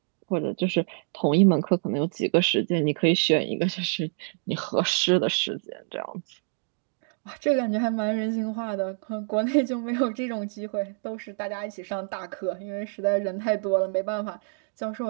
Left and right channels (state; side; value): silent; left; 60 dB below the other